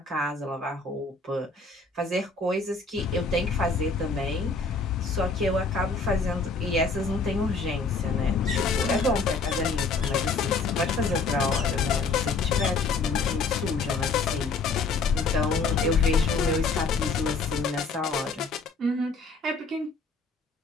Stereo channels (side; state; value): right; quieter; 4.1 dB